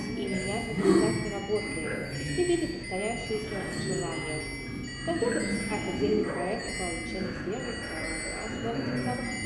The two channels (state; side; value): identical; both; correlation 1.00